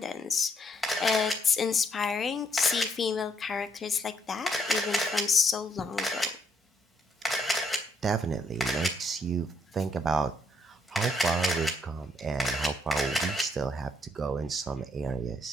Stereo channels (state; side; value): normal; both; correlation 0.71